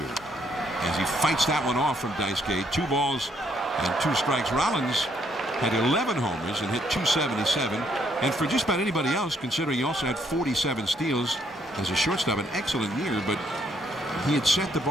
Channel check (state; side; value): normal; both; correlation 0.70